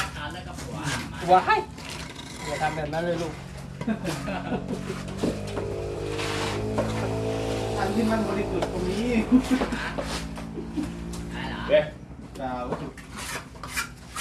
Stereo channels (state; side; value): identical; both; correlation 1.00